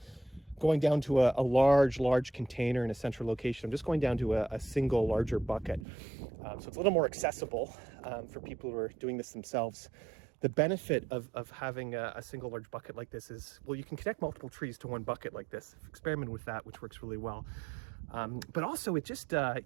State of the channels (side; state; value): left; drops out; at 5.9 s